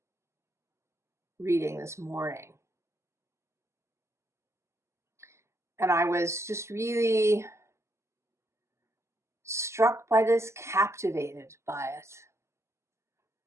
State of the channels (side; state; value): left; late; 0.13 ms